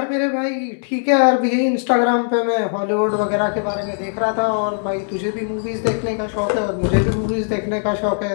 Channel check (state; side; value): silent; right; digital silence